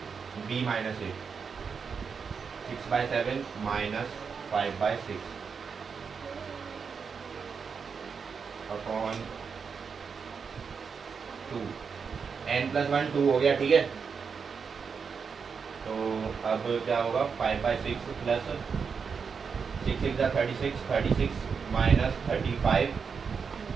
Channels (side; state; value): left; quieter; 5.9 dB